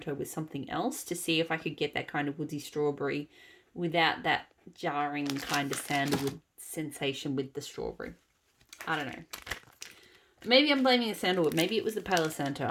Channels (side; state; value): both; identical; correlation 1.00